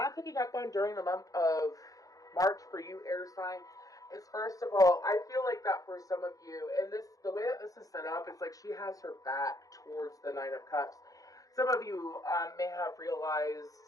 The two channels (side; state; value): right; late; 0.17 ms